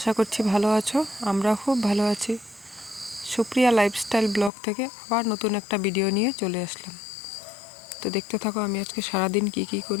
করছি ভালো আছো। আমরা খুব ভালো আছি। সুপ্রিয়া লাইফস্টাইল ব্লগ থেকে আবার নতুন একটা ভিডিও নিয়ে চলে আসলাম। তো দেখতে থাকো আমি আজকে সারাদিন কি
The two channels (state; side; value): drops out; right; at 4.5 s